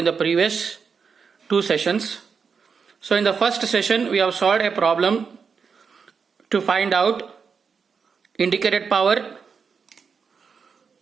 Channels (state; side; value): quieter; left; 5.8 dB